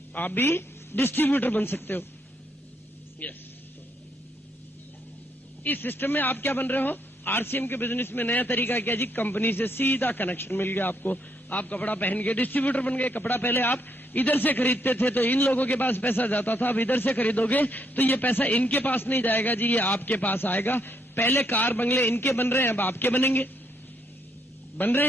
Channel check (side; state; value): both; normal; correlation 0.74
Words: आप भी डिस्ट्रीब्यूटर बन सकते हो। यस, इस सिस्टम में आप क्या बन रहे हो? आरसीएम के बिजनेस में नया तरीका क्या जी? कंपनी से सीधा कनेक्शन मिल गया आपको। आप कपड़ा पहन के डिस्ट्रीब्यूटर बन गए। कपड़ा पहले आप इधर से खरीदते थे तो इन लोगों के पास पैसा जाता था, अब इधर से खरीदोगे तो ये पैसा इनके पास नहीं जाएगा जी, ये आपके पास आएगा। पहले कार बंगले इनके बन रहे हैं, अब आपके बनेंगे, बन रहे